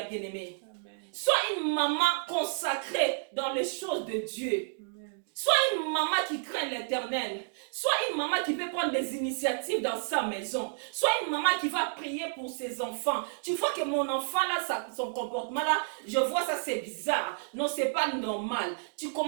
bien-aimée. Amen. Sois une maman consacrée dans les choses de Dieu. Amen. Sois une maman qui craint l'Éternel. Sois une maman qui peut prendre des initiatives dans sa maison. Sois une maman qui va prier pour ses enfants. Tu vois que mon enfant là, son comportement là, je vois ça, c'est bizarre. Non, c'est pas normal. Tu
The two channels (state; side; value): silent; left; digital silence